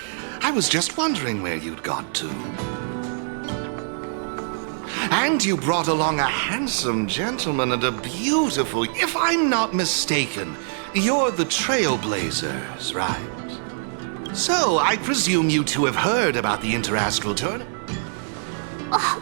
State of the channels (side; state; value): left; silent; 63 dB below the other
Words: I was just wondering where you'd got to. And you brought along a handsome gentleman and a beautiful... If I'm not mistaken, you're the Trailblazers, right? So, I presume you two have heard about the Interastral Tournament. Oh,